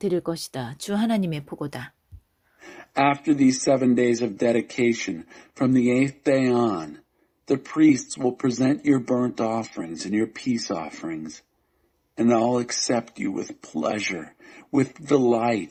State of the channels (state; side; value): identical; both; correlation 1.00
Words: 것이다. 주 하나님의 보고다. After these 7 days of dedication, from the 8th day on, the priests will present your burnt offerings and your peace offerings, and I'll accept you with pleasure, with